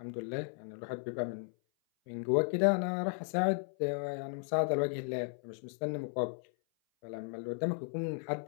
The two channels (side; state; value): right; silent; 54 dB below the other